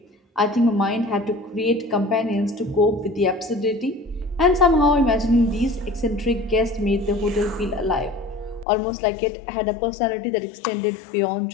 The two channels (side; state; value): right; drops out; at 8.7 s